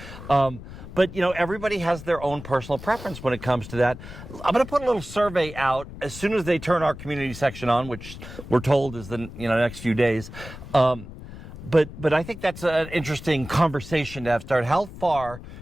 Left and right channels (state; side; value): noise; left; rumble, 13 dB below the sound